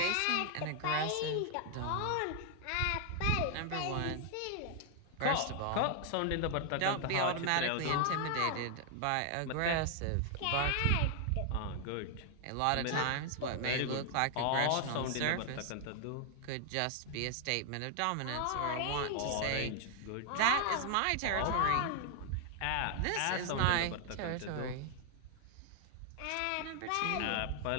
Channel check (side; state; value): both; different; correlation 0.00